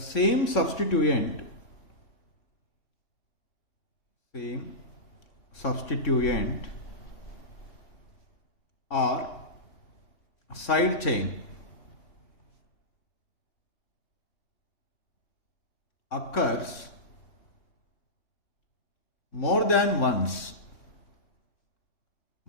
substituent or side chain occurs more than once,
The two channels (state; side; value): late; right; 3.6 ms